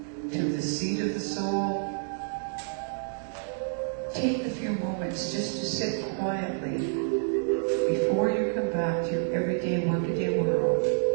to the seat of the soul, take a few moments just to sit quietly before you come back to your everyday, workaday world,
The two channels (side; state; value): left; silent; digital silence